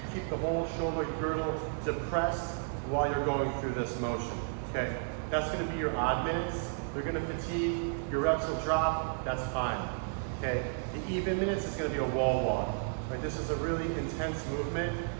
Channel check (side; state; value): left; silent; digital silence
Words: keep the whole shoulder girdle depressed while you're going through this motion, okay? That's gonna be your odd minutes. They're gonna fatigue, your reps will drop, that's fine, okay? The even minutes is gonna be a wall walk, right? This is a really intense movement,